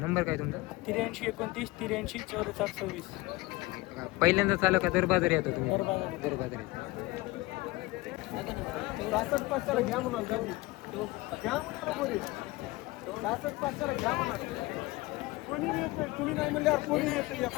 काय तुमचा? 83 29 83 44 26 पहिल्यांदा चालू का दर बाजार येतो तुम्ही? दर बाजार. दर बाजार येतो. 66 पाचशेला घ्या म्हणाल का? घ्या म्हणाल कोणी 66 पाचशेला घ्या म्हणाल कोणी येत नाही. तुम्ही नाही म्हणल्यावर कोणी येत नाही.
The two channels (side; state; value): right; quieter; 21.1 dB